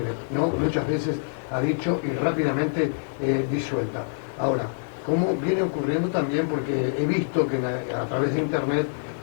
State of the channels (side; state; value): right; silent; digital silence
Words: ¿no? Muchas veces ha dicho y rápidamente disuelta. Ahora, ¿cómo viene ocurriendo también? Porque he visto que a través de Internet,